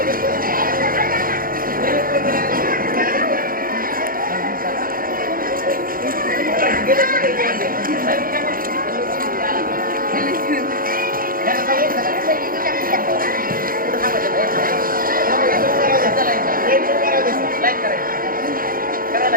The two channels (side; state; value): left; late; 0.41 ms